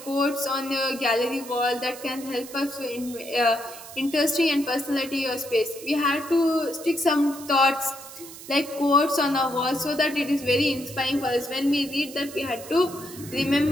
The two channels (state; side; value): noise; right; hiss, 15 dB below the sound